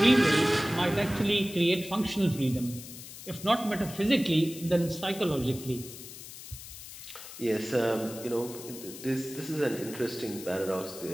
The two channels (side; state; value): left; noise; hiss, 13 dB below the sound